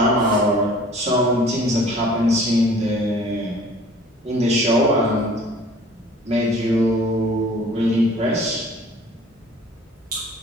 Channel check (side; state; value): both; normal; correlation 0.50